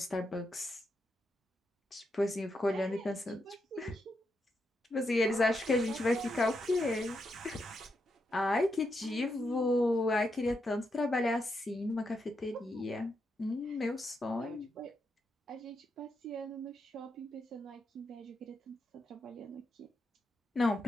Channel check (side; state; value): both; normal; correlation 0.83